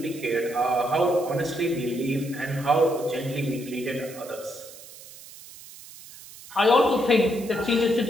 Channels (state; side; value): noise; right; hiss, 18 dB below the sound